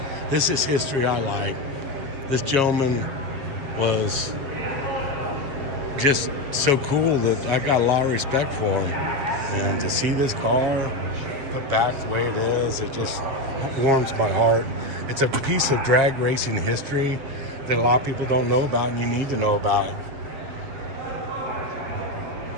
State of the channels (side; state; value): left; late; 7.3 ms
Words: This is history I like. This gentleman was just so cool that I got a lot of respect for him. And to see this car put back the way it is, it just warms my heart. It's a piece of drag racing history that a lot of people don't know about, and you need to know about it.